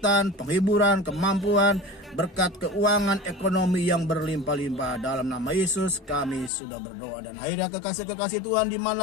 penghiburan, kemampuan, berkat keuangan, ekonomi yang berlimpah-limpah. Dalam nama Yesus kami sudah berdoa. Dan akhirnya kekasih-kekasih Tuhan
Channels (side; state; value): right; drops out; at 6.5 s